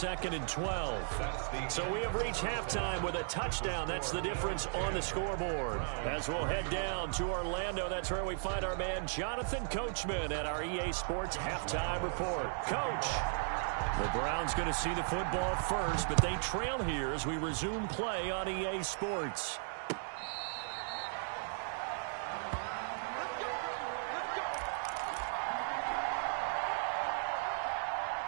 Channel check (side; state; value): left; silent; digital silence